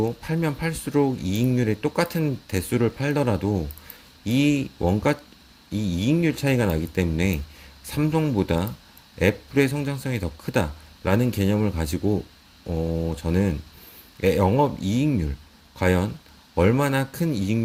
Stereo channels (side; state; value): both; identical; correlation 1.00